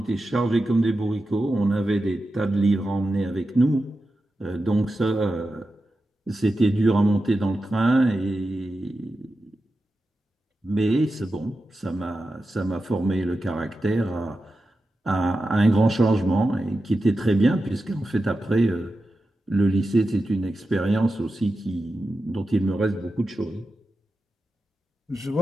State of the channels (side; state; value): both; normal; correlation 0.91